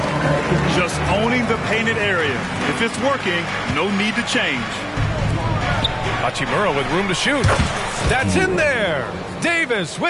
Just owning the painted area. If it's working, no need to change. Hachimura with room to shoot. That's in there. Davis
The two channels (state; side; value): identical; both; correlation 1.00